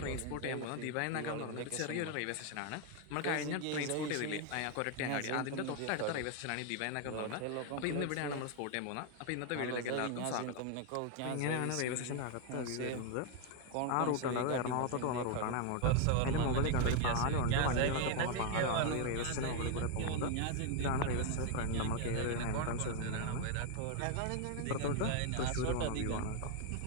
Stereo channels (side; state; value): both; different; correlation 0.01